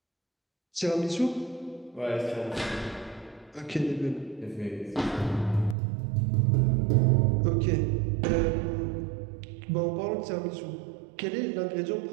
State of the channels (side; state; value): left; drops out; at 5.8 s